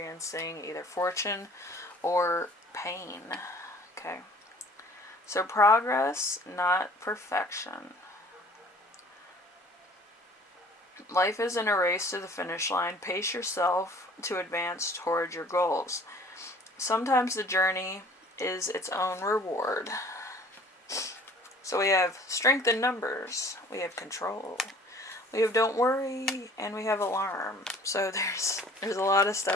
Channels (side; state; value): both; normal; correlation 0.51